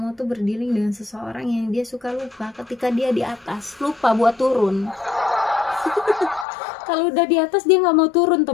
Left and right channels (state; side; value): drops out; right; at 6.5 s